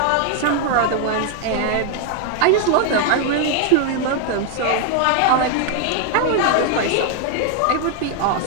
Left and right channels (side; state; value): both; different; correlation 0.00